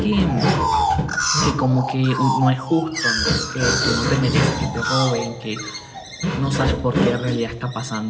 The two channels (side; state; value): both; identical; correlation 1.00